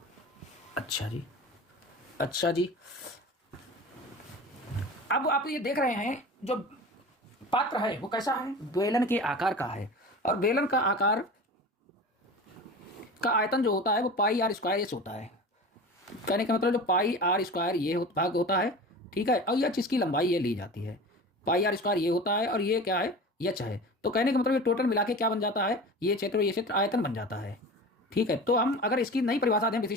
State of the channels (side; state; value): both; normal; correlation 0.34